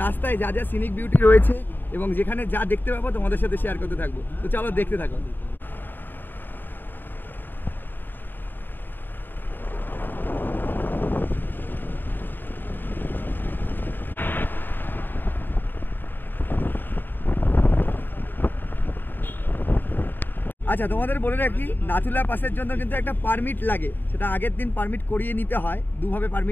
রাস্তায় যা যা সিনিক বিউটি রয়েছে এবং যেখানে যা দেখতে পাবো তোমাদের সাথে শেয়ার করতে থাকবো। তো চলো দেখতে থাকো। আচ্ছা, তোমাদের বলে রাখি, নাথুলা পাসের জন্য কিন্তু একটা পারমিট লাগে। সেটা আগের দিন পারমিট করিয়ে নিতে হয়। দুভাবে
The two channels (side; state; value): right; late; 0.093 ms